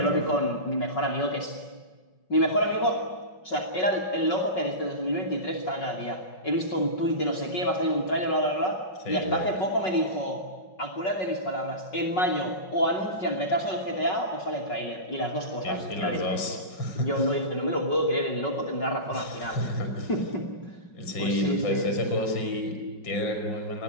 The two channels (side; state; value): right; late; 5.4 ms